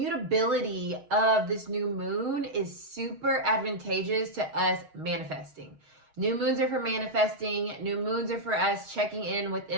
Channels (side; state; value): left; late; 6.5 ms